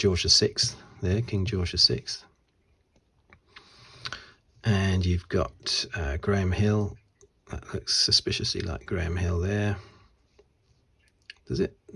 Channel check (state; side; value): identical; both; correlation 1.00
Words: VI there, King George VI. And you've got Graham Hill. That looks suspiciously like Graham Hill there. Does it?